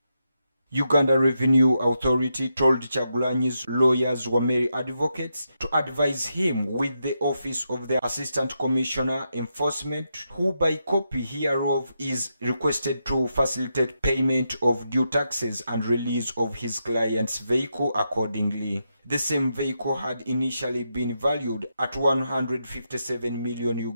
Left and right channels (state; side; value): inverted; both; correlation -0.84